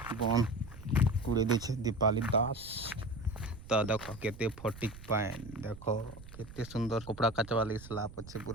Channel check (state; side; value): noise; right; rumble, 16 dB below the sound